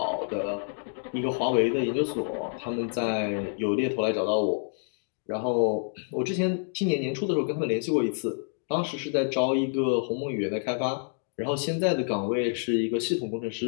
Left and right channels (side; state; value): right; silent; 59 dB below the other